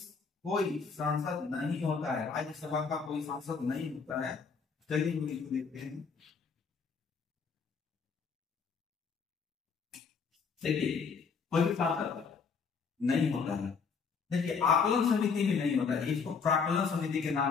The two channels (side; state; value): right; quieter; 5.6 dB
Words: सांसद नहीं होता है। राज्यसभा का कोई सांसद नहीं होता है। चलिए हम इसको देखते हैं। देखिए कोई भी सांसद नहीं होता है। देखिए आकलन समिति में नहीं होता है, इसको प्राकलन समिति के